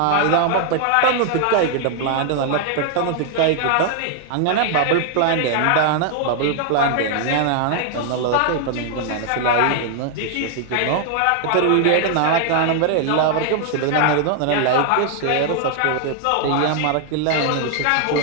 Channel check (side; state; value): both; different; correlation 0.00